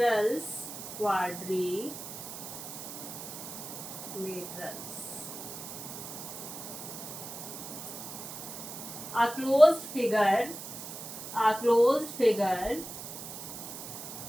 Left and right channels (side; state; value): right; noise; hiss, 9 dB below the sound